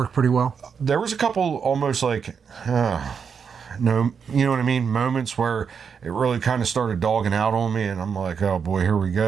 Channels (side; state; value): left; quieter; 6.5 dB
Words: pretty well. There was a couple almost like, no, you know what I mean? Moments where it really kind of started dogging out on me, and I'm like, oh boy, here we